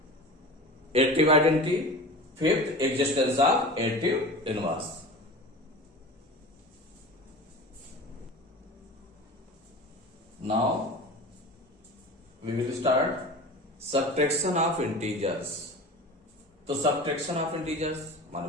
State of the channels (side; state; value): both; normal; correlation 0.34